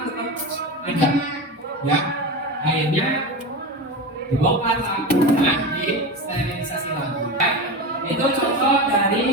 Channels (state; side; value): normal; both; correlation 0.24